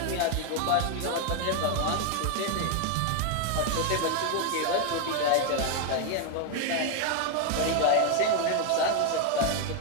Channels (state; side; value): different; both; correlation 0.01